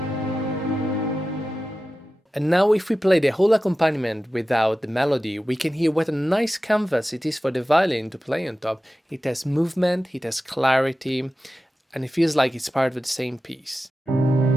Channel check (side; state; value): both; normal; correlation 0.94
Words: And now if we play the whole accompaniment without the melody, we can hear what a nice canvas it is for the violin to play on top. It has movement, it has clarity, and it feels like it's part of the same piece.